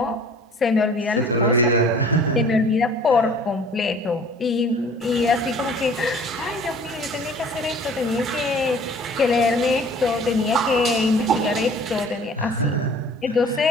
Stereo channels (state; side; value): normal; both; correlation 0.49